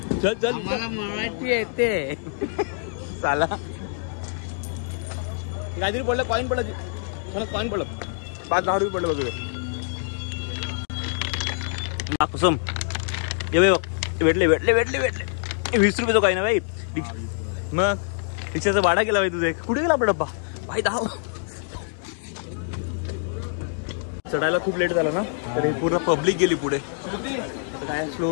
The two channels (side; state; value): right; silent; digital silence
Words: चल चल, आम्हाला मराठी येते. चाला. काहीतरी पडलं, कॉईन पडलं. कॉईन पडलं. 5-10 रुपये पडलं बघ. कुसुम ये भेटले 20 रुपये तो काही ना भाई. मग रिक्षाचा भाडा केला भाई तुझे. कुठे गेला आपला डब्बा भाई? धाव. चढायला खूप लेट झाला ना, तर हे पूर्ण पब्लिक गेली पुढे. काय